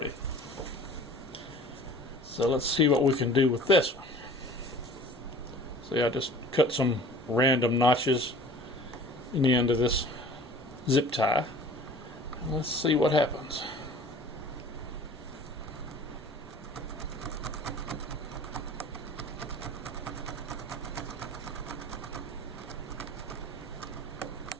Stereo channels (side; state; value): both; normal; correlation 0.45